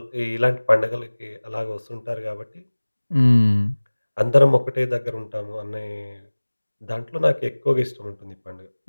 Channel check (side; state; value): both; inverted; correlation -1.00